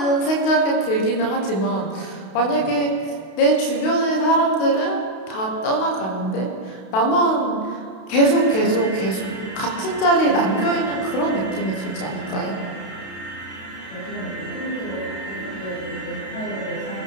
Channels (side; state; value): right; late; 32 ms